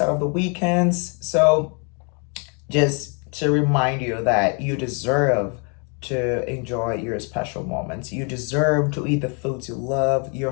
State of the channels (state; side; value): quieter; right; 37.0 dB